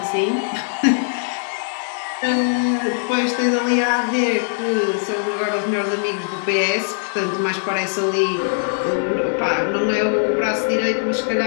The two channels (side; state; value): right; silent; digital silence